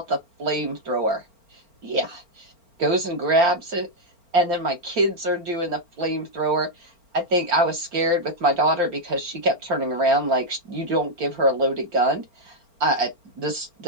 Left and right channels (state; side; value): late; left; 4.4 ms